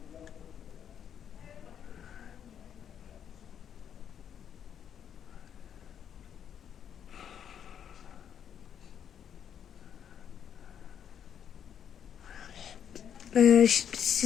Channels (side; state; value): right; quieter; 8.7 dB